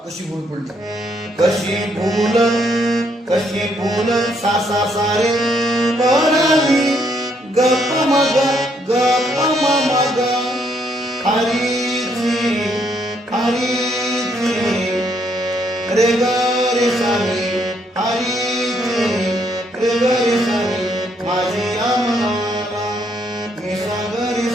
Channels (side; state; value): both; normal; correlation 0.72